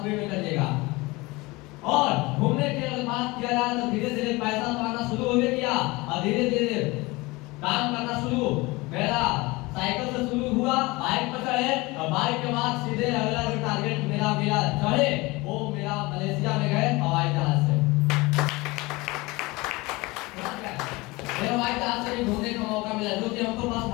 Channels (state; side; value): quieter; right; 22.9 dB